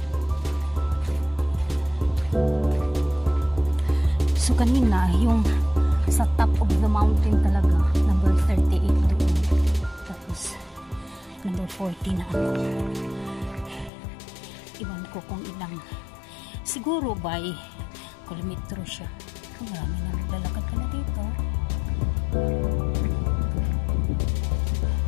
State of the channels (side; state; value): right; drops out; at 13.9 s